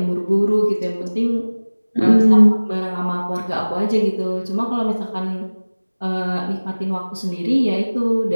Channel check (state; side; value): inverted; both; correlation -1.00